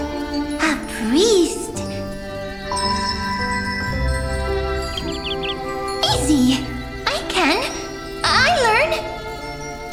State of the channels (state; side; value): identical; both; correlation 1.00